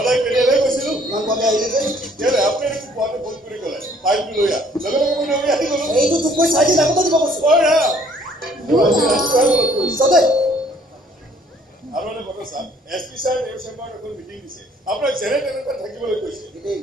কেতিয়ালৈ গৈছিলো ইমান কমে আহিলে যে কেলে আপুনি দেখোন পোৱাতে ফোন কৰি ক'লে ফাইলটো লৈ আহ লগে লগে মই দৌৰি আহি গ'লো এইটো তোক মই 4 দিন আগতে দিব কৈছো চবে আৰু এটা কথা ছাৰ এছপি ছাৰ এই চেম্বাৰত এখন মিটিং দিছে আপোনাক যেনে তেনেকৈ থাকিবলৈ কৈছে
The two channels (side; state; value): both; normal; correlation 0.60